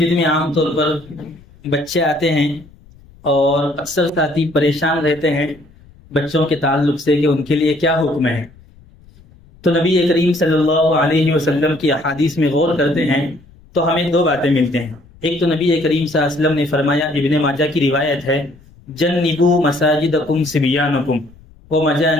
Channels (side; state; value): left; noise; rumble, 26 dB below the sound